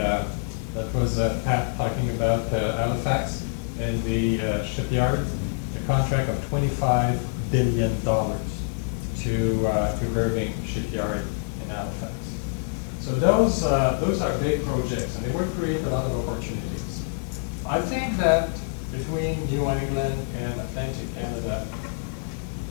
was Pat talking about Halifax and the shipyard, a contract of $25 billion to Irving Shipyard in Halifax. So those are big projects, and they would create a lot of opportunities. I think that between New England and Atlantic Canada,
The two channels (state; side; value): silent; right; digital silence